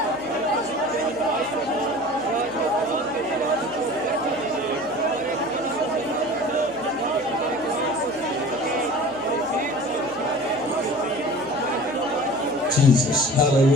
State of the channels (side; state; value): right; noise; hum, 24 dB below the sound